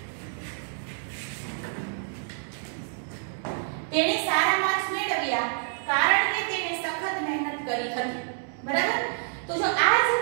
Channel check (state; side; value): silent; left; digital silence